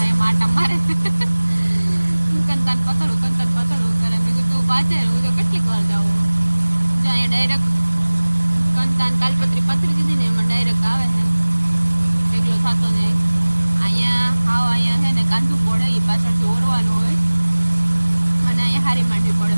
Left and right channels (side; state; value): both; inverted; correlation -1.00